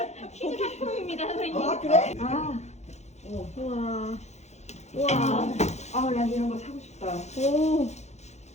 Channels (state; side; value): late; right; 0.32 ms